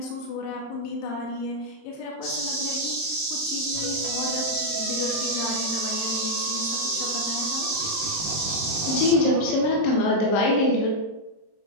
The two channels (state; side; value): late; right; 26 ms